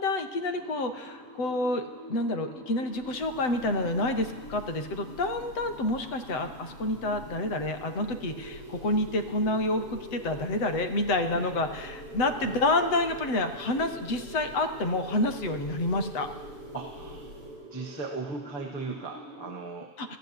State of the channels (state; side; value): late; right; 7.9 ms